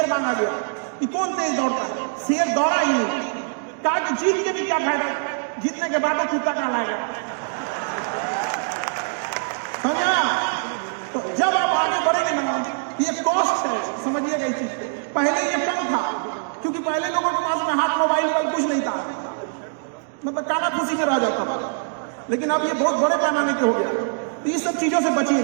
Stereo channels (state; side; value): silent; left; digital silence